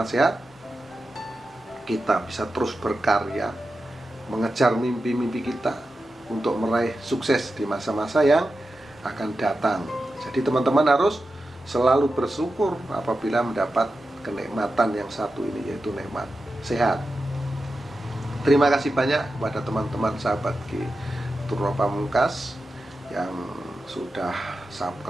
sehat kita bisa terus berkarya, mengejar mimpi-mimpi kita untuk meraih sukses di masa-masa yang akan datang. Jadi teman-teman harus selalu bersyukur apabila mendapat kenikmatan yang satu ini, yaitu nikmat sehat. Terima kasih banyak kepada teman-teman sahabat Truno Pamungkas yang sudah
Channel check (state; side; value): normal; both; correlation 0.91